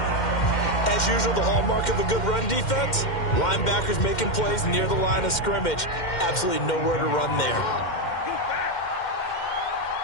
As usual, the hallmark of a good run defense, linebackers making plays near the line of scrimmage. Absolutely nowhere to run there.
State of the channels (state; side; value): late; right; 2.1 ms